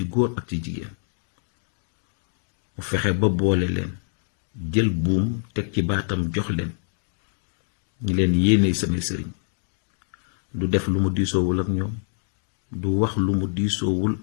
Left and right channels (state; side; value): silent; right; digital silence